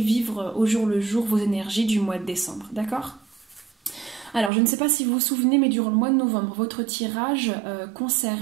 au jour le jour vos énergies du mois de décembre, d'accord? Alors, je ne sais pas si vous vous souvenez, mais durant le mois de novembre, votre tirage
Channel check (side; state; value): left; drops out; at 4.5 s